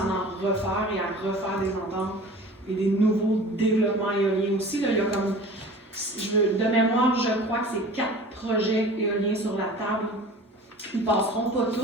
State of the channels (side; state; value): both; normal; correlation 0.41